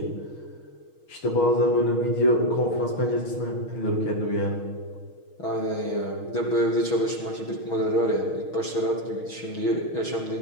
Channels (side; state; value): right; late; 6.3 ms